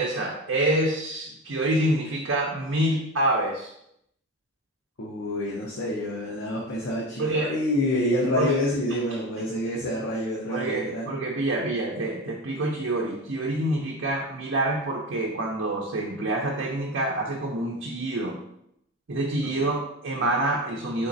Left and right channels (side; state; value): both; normal; correlation 0.24